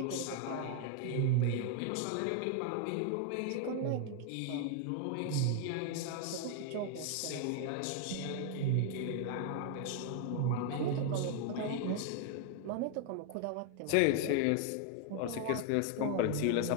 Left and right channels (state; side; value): different; both; correlation 0.00